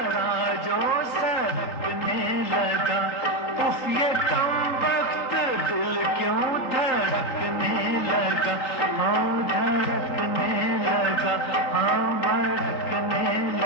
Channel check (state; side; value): late; right; 3.8 ms